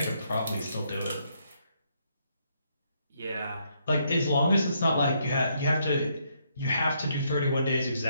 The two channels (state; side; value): inverted; both; correlation -0.74